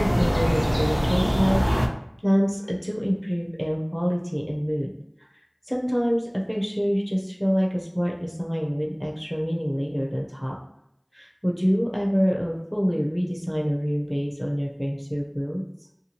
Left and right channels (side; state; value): both; identical; correlation 1.00